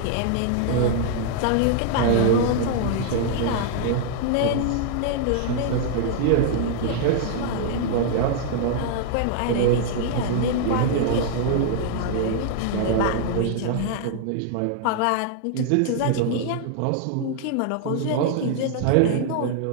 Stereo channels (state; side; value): different; both; correlation -0.01